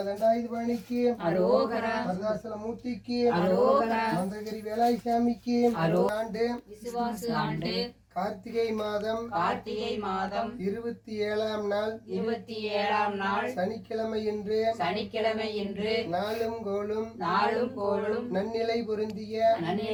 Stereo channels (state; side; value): identical; both; correlation 1.00